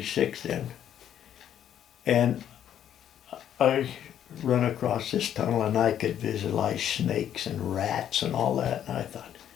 then. And I run across this tunnel, and I could visualize snakes and rats and all that. And I thought,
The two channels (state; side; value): quieter; right; 10.1 dB